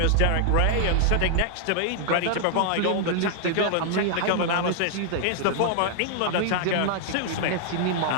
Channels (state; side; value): different; both; correlation -0.01